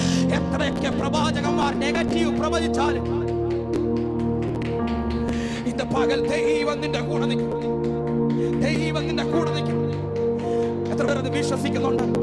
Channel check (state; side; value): identical; both; correlation 1.00